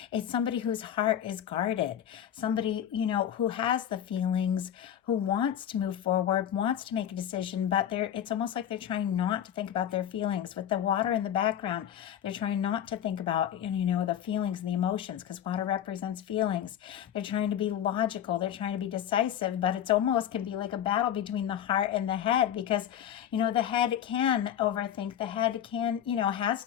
It's somebody whose heart is guarded. Somebody, who has the feelings, who wants to move forward, wants to make a decision, but it's almost like they're trying not to think about their feelings. With the water in the background, they're trying not to think about, the feelings and the emotions, because water represents feelings. They're trying to be logical. They're trying to be decisive, but it's almost can be like a battle between the heart and the head, because, the head can overthink. The head can, has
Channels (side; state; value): right; quieter; 10.1 dB